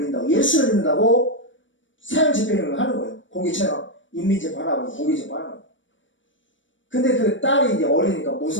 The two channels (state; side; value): late; right; 0.56 ms